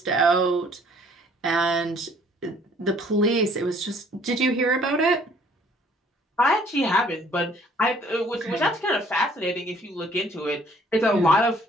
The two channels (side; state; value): both; normal; correlation 0.59